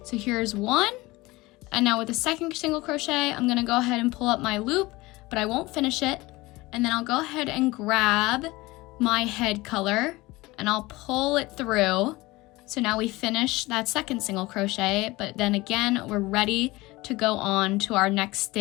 So here's 1, and now with the 2nd single crochet, I'm gonna go ahead and pull up my loop, but I won't finish it. And then I'll go ahead and grab my head color and I'll pull it through. So now we finish that 2nd single crochet, but then again, we're ready to go on to our next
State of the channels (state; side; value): quieter; right; 20.8 dB